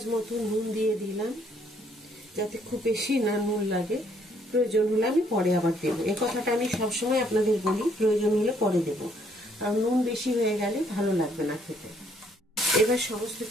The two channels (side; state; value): both; normal; correlation 0.67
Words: মতো নুন দিয়ে দিলাম, যাতে খুব বেশি না নুন লাগে। প্রয়োজন হলে আমি পরে আবার দেবো, এই কথাটা আমি সবসময় আপনাদের বলি, প্রয়োজন হলে পরে দেবো, কারণ নুন বেশি হয়ে গেলে ভালো লাগবে না খেতে। এবার সমস্ত